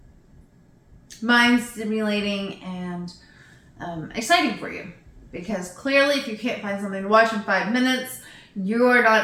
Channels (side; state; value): both; identical; correlation 1.00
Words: mind stimulating and exciting for you. Because clearly, if you can't find something to watch in 5 minutes, you're